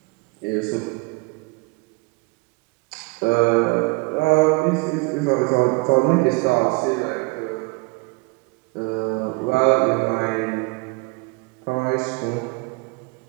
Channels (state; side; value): quieter; left; 27.9 dB